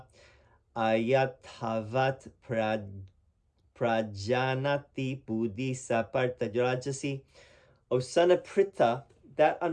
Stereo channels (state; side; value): identical; both; correlation 1.00